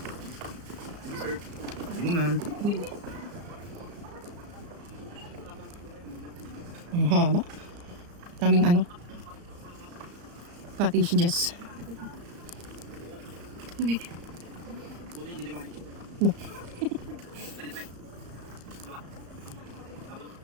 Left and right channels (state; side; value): late; left; 34 ms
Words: Ang haba. Daming ano. Cottages. Tubig. No.